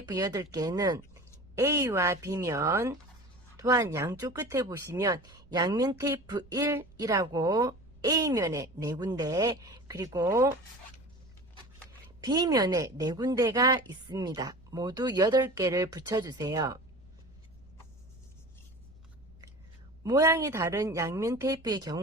8개는 A와 B면, 또한 양쪽 끝에 보시면 양면 테이프 1이라고 A면에 4군데, 그리고 B면에 4군데가 있습니다. 모두 8개를 붙여주세요. 모양이 다른 양면 테이프의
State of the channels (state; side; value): noise; right; rumble, 25 dB below the sound